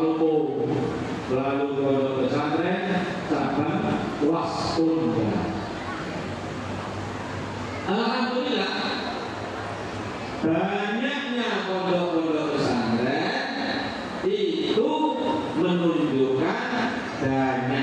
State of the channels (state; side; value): identical; both; correlation 1.00